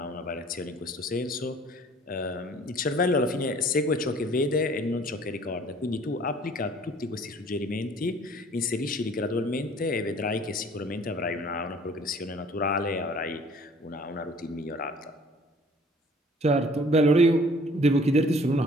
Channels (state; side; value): normal; both; correlation 0.53